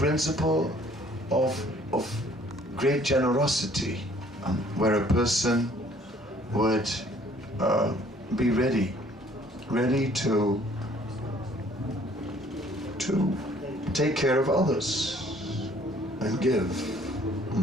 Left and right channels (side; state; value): both; normal; correlation 0.58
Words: of great generosity, where a person would be ready to take care of others and give.